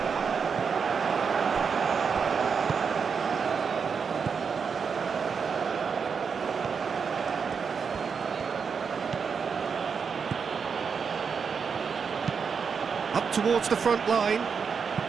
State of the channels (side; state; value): left; quieter; 6.0 dB